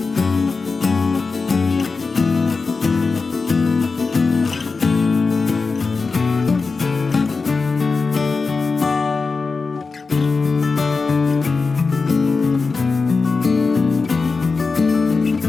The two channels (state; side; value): quieter; right; 4.3 dB